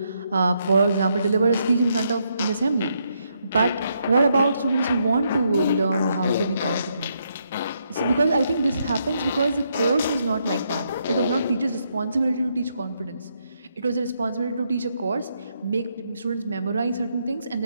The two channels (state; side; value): inverted; both; correlation -0.77